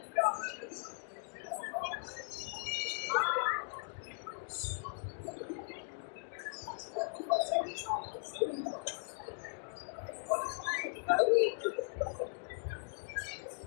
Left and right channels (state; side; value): silent; right; digital silence